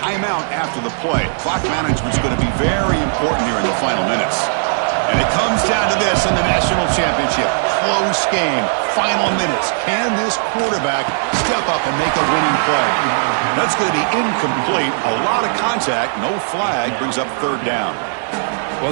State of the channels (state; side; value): silent; left; 61 dB below the other